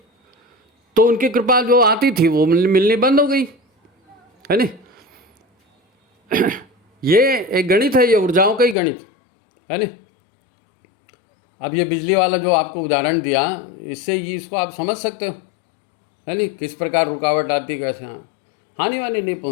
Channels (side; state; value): right; drops out; at 8.8 s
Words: तो उनकी कृपा जो आती थी वो मिलनी बंद हो गई, है नहीं। ये एक गणित है, ये ऊर्जाओं का ही गणित है नहीं। अब ये बिजली वाला जो आपको उदाहरण दिया, इससे ये इसको आप समझ सकते हो, है नहीं, किस प्रकार रुकावट आती, कैसे हानि वानी नहीं